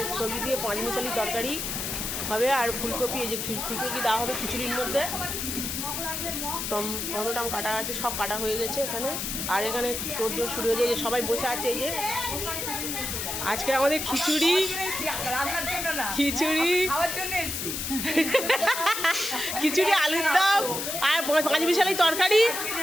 সবজি দিয়ে পাঁচমিশালি তরকারি হবে, আর ফুলকপি, এই যে ফুলকপি দেওয়া হবে খিচুড়ির মধ্যে। টমেটো কাটা আছে, সব কাটা হয়ে গেছে এখানে। আর এখানে তোড়জোড় শুরু হয়ে যায়, সবাই বসে আছে। এই যে আজকে আমাদের খিচুড়ি খিচুড়ি আলুর দম আর পাঁচমিশালি তরকারি,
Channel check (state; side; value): noise; left; hiss, 3 dB below the sound